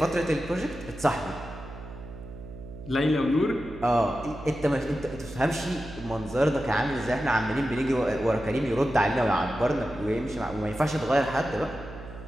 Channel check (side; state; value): right; noise; hum, 13 dB below the sound